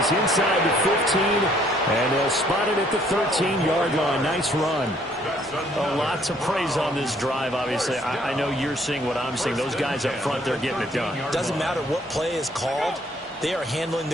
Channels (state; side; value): normal; both; correlation 0.64